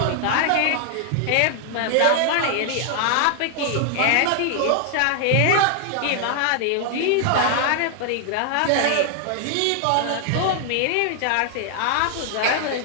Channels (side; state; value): both; different; correlation 0.00